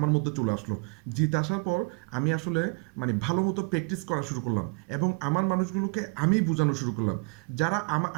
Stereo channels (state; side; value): quieter; left; 34.3 dB